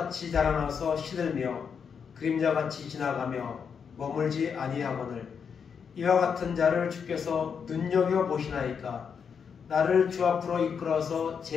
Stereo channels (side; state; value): right; quieter; 6.7 dB